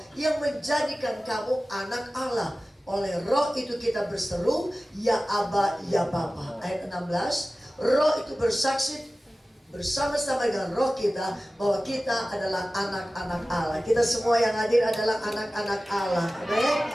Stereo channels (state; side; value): normal; both; correlation 0.96